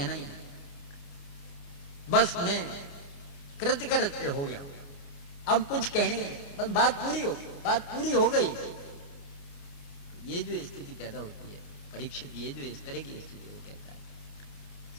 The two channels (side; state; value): right; late; 29 ms